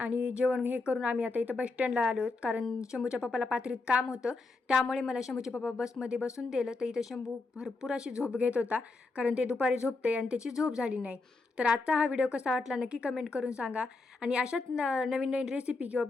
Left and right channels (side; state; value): right; quieter; 3.6 dB